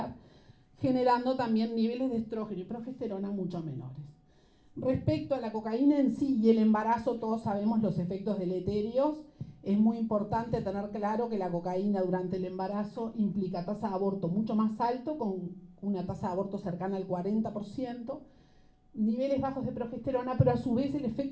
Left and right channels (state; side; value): identical; both; correlation 1.00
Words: generando también niveles de estrógeno y progesterona mucho menores. Respecto a la cocaína en sí y el embarazo, todos sabemos los efectos deleterios. Es muy importante tener claro que la cocaína durante el embarazo implica tasa de aborto mucho más alto, con una tasa de aborto cercana al 40%, niveles bajos de progesterona, pero a su vez el